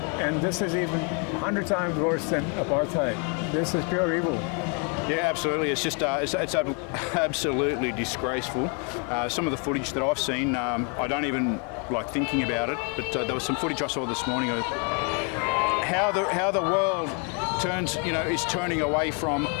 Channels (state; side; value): quieter; right; 37.1 dB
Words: and this is even 100 times worse than apartheid. This is pure evil. Yeah, absolutely. It's just it's absolutely disgraceful. Some of the footage that I've seen, I don't even like thinking about it. But there was some footage I saw this morning of how the world is turning away from